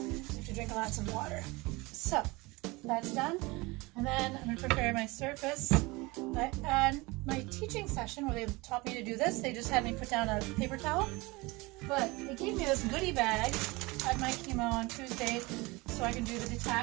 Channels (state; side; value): quieter; left; 23.7 dB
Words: have to drink lots of water. So that's done, and then I'm going to prepare my surface. And my teaching session where they taught me to do this, they just had me put down a paper towel. But they gave me this goodie bag at my chemo on Tuesday, so I can do the